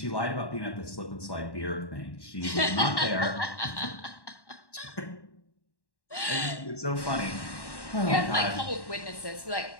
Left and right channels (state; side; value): late; right; 1.1 ms